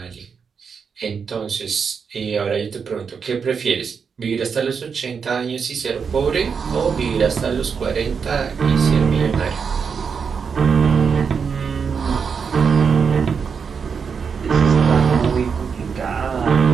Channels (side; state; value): left; quieter; 6.1 dB